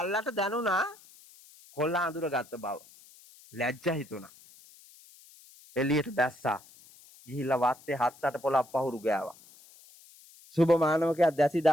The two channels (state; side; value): noise; left; hiss, 24 dB below the sound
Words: දැනුණා කොල්ලා අඳුර ගත්ත බව. ලැජ්ජා හිතුණා. එළියට බැස්සා. ගිහිල්ලා වත්තේ 7-8 පොළක් පහුරු ගෑවා. සුබමානවකයා දැසි